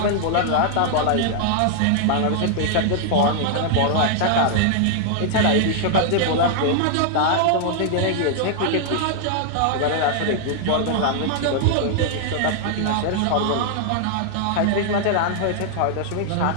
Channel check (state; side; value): different; both; correlation -0.01